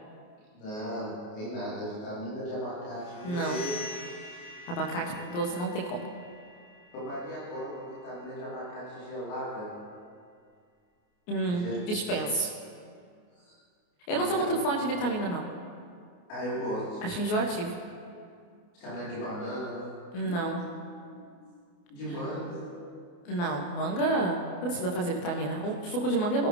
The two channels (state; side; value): late; right; 28 ms